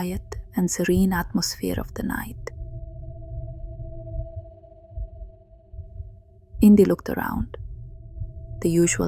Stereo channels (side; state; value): both; identical; correlation 1.00